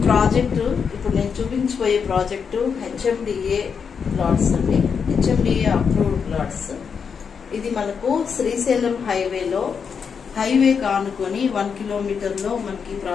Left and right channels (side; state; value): right; quieter; 6.4 dB